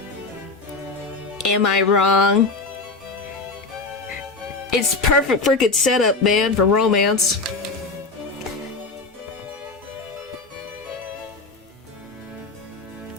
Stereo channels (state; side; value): quieter; right; 3.8 dB